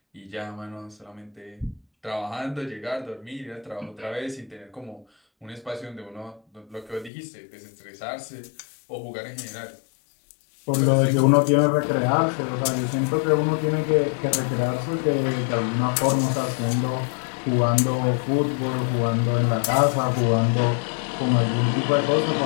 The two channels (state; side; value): drops out; right; at 7.1 s